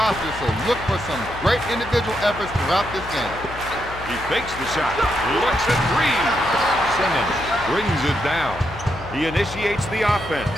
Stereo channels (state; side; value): noise; left; hum, 14 dB below the sound